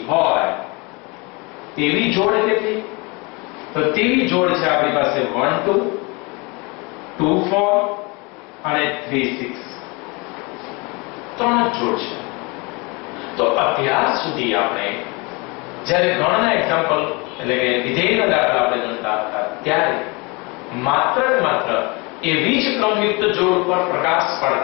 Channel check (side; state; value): right; quieter; 27.8 dB